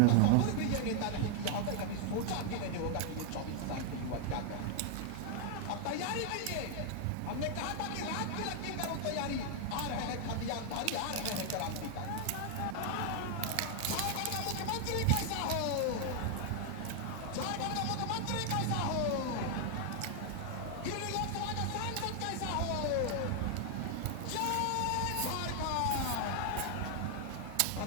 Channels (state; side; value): different; both; correlation 0.00